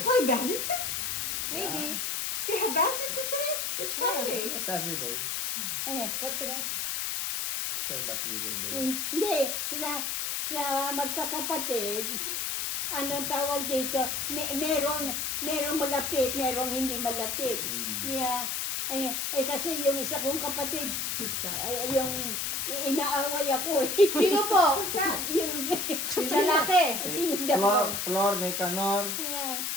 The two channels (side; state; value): left; noise; hiss, 1 dB below the sound